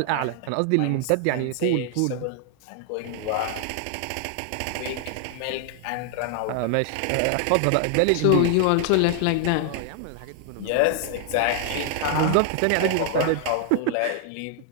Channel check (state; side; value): different; both; correlation 0.00